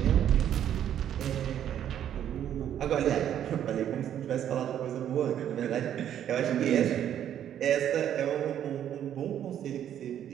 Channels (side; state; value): left; quieter; 10.3 dB